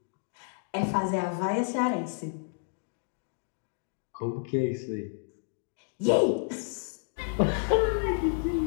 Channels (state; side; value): silent; right; 57 dB below the other